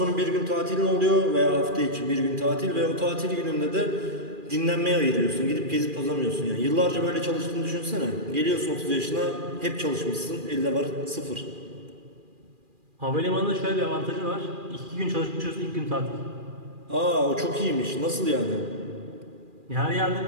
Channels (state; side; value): late; left; 2.4 ms